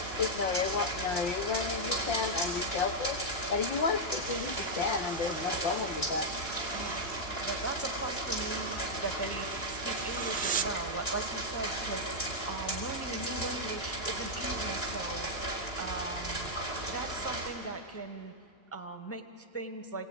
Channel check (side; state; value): right; late; 2.9 ms